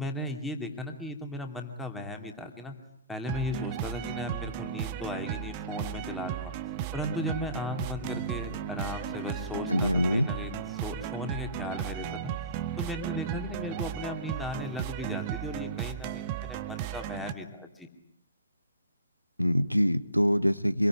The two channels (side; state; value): both; inverted; correlation -0.44